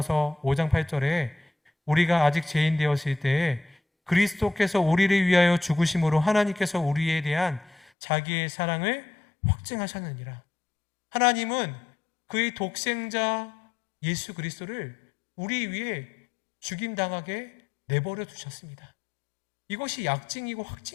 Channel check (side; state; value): right; drops out; at 7.9 s